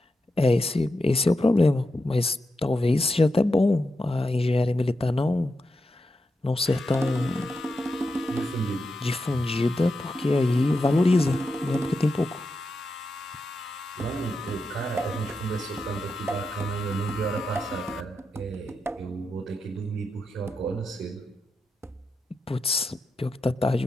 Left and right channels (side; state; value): both; normal; correlation 0.87